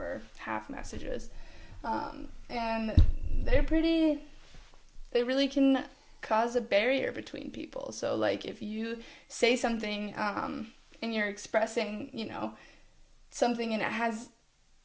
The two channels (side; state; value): both; identical; correlation 1.00